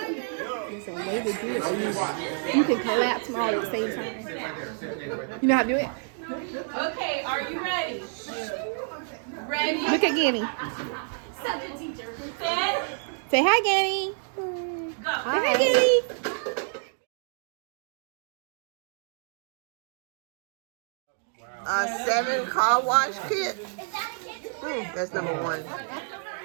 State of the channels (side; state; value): left; silent; 59 dB below the other